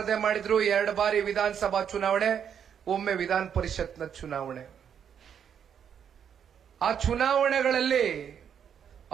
ಮಾಡಿದ್ರು, 2 ಬಾರಿ ವಿಧಾನಸಭಾ ಚುನಾವಣೆ, ಒಮ್ಮೆ ವಿಧಾನ ಪರಿಷತ್ನ ಚುನಾವಣೆ. ಆ ಚುನಾವಣೆಗಳಲ್ಲಿ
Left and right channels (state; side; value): quieter; left; 8.2 dB